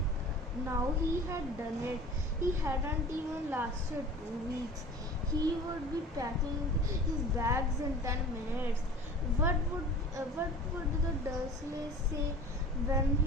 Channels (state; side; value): normal; both; correlation 0.40